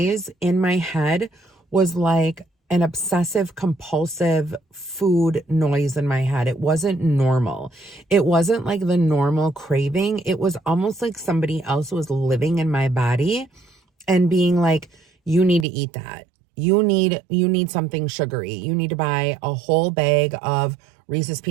in my head was like an obsessive compulsive food noise in my head. It wasn't normal. It wasn't like the normal craving. It was almost like somebody else was living in my body and being like, you need to eat that. You need something sugary. You need to buy a whole bag of Reese's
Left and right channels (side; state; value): left; drops out; at 15.7 s